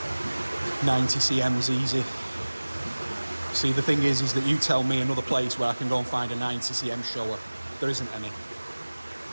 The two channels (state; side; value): inverted; both; correlation -1.00